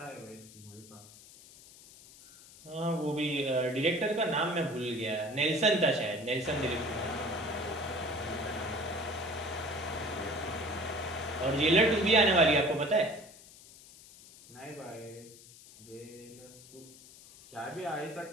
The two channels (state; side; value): noise; left; hiss, 20 dB below the sound